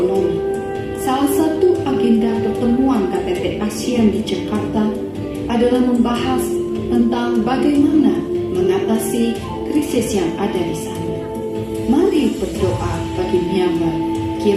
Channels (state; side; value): identical; both; correlation 1.00